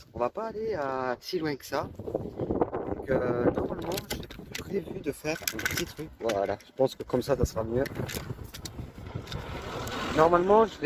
On va pas aller si loin que ça. Donc normalement, j'ai prévu de faire un petit truc. Voilà, je pense que comme ça sera mieux. Normalement, je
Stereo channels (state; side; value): identical; both; correlation 1.00